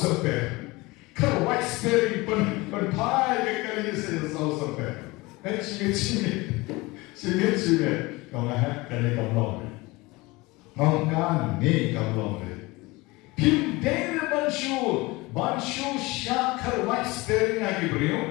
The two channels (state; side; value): quieter; right; 22.6 dB